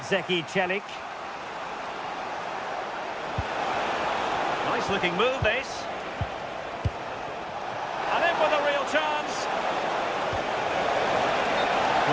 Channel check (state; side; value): identical; both; correlation 1.00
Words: Çelik. Nice looking move, this.